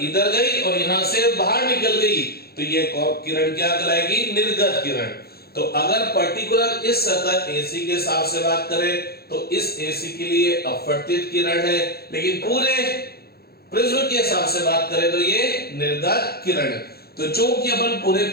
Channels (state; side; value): late; right; 0.45 ms